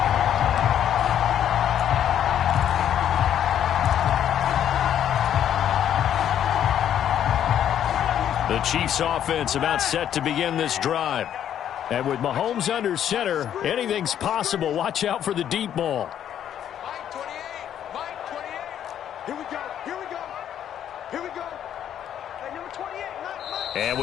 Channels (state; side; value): quieter; right; 10.1 dB